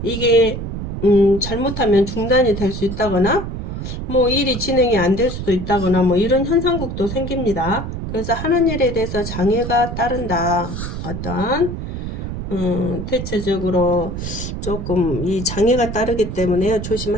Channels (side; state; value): right; noise; rumble, 6 dB below the sound